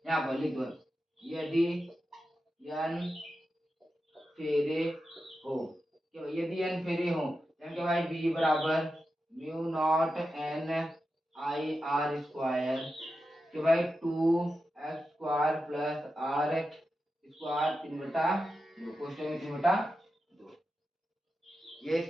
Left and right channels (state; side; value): normal; both; correlation 0.90